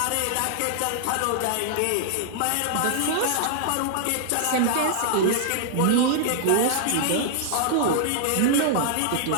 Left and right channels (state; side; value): different; both; correlation -0.01